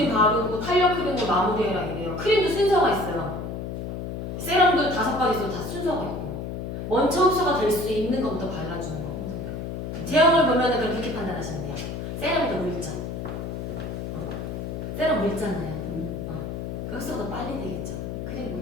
바르고 탄력 크림으로 마무리해라 이래요. 크림도 순서가 있어요. 세럼도 5가지 있어도 다 순서가 있고 먼저 흡수가 될 수 있는 것부터 발라주는 거. 제형을 보면은 그렇게 판단하시면 돼요. 세럼이 더 묽죠. 세럼 묽잖아요. 그 흡수가 더 빨리 되겠죠.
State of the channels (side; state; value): left; noise; hum, 5 dB below the sound